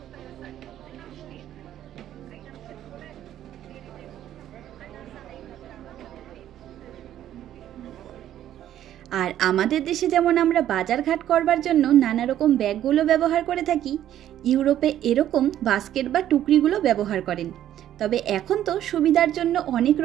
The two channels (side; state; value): left; quieter; 11.7 dB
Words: আর আমাদের দেশে যেমন আমরা বাজারঘাট করবার জন্য নানা রকম ব্যাগগুলো ব্যবহার করে থাকি, ইউরোপে এরকম বাস্কেট বা টুকরিগুলো ব্যবহার করেন। তবে এখন তো সুবিধার জন্য অনেক